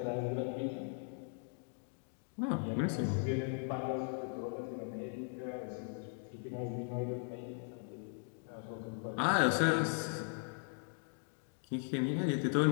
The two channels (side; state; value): right; silent; 52 dB below the other